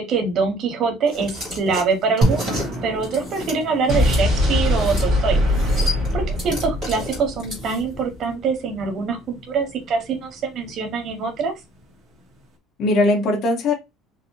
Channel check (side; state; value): both; normal; correlation 0.58